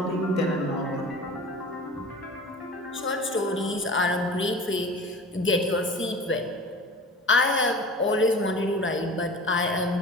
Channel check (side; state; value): both; normal; correlation 0.38